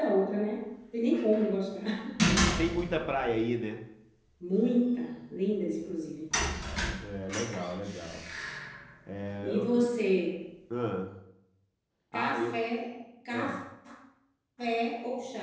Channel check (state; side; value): identical; both; correlation 1.00